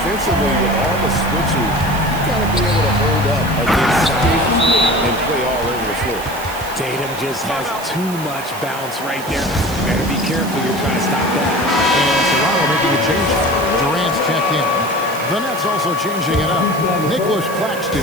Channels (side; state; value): right; noise; hiss, 14 dB below the sound